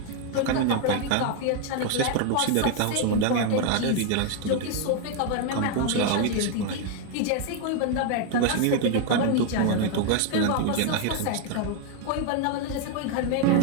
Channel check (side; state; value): both; different; correlation 0.00